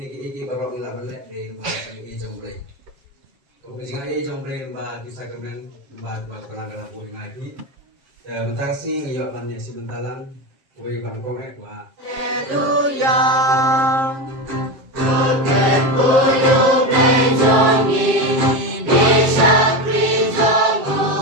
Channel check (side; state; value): left; late; 7.5 ms